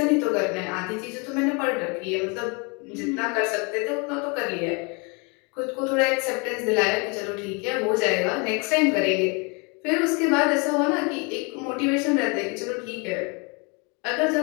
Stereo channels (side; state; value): right; quieter; 31.7 dB